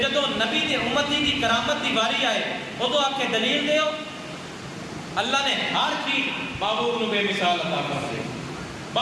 جدو نبی دے امتی دی کرامت دی باری آئے ادو آ کے دلیل دیو. اللہ نے ہر چیز بابور نو بے مثال عطا کر دے با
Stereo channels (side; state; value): both; identical; correlation 1.00